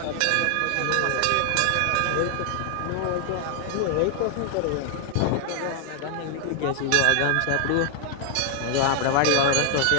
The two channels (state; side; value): different; both; correlation 0.00